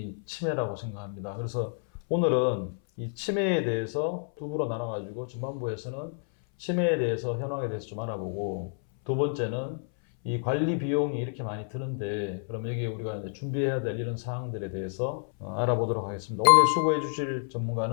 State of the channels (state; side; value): silent; right; 58 dB below the other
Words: 치매라고 생각합니다. 그래서 오늘은 이 치매에 대해서 두 부로 나눠가지고 전반부에서는 치매에 대해서 현황에 대해서 좀 알아보고, 두 번째는 이 관리 비용이 이렇게 많이 드는데 그럼 여기에 우리가 이제 준비해야 될 이런 사항들에 대해서 알아보도록 하겠습니다. 오늘 수고해 주실